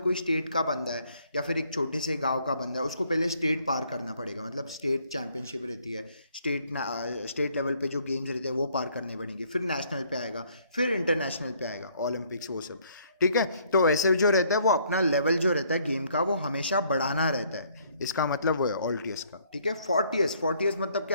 स्टेट का बंदा है या फिर एक छोटे से गांव का बंदा है, उसको पहले स्टेट पार करना पड़ेगा. मतलब स्टेट चैंपियनशिप रहती है, स्टेट लेवल पे जो गेम्स रहते हैं वो पार करने पड़ेंगे, फिर नेशनल पे आएगा, फिर इंटरनेशनल पे आएगा, ओलंपिक्स वो सब. ठीक है. तो ऐसे जो रहता है वो अपना लेवल जो रहता है गेम का वो हमेशा बढ़ाना रहता है. इसका मतलब वो है ऑल्टियस का. ठीक है. फोर्टियस मतलब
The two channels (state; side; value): inverted; both; correlation -0.65